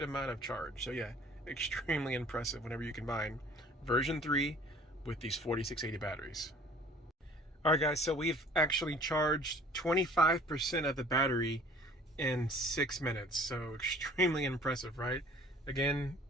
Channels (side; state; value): both; normal; correlation 0.50